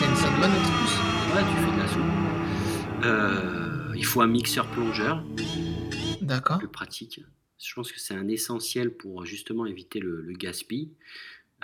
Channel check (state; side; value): identical; both; correlation 1.00